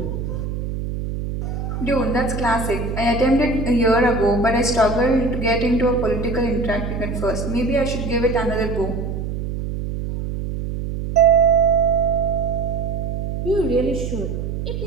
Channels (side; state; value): right; noise; hum, 4 dB below the sound